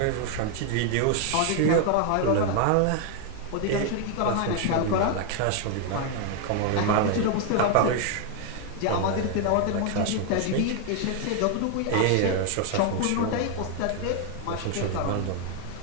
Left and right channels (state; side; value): different; both; correlation 0.00